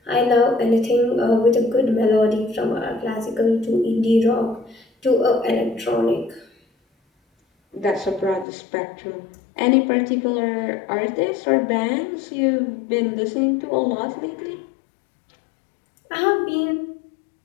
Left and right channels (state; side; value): drops out; right; at 8.5 s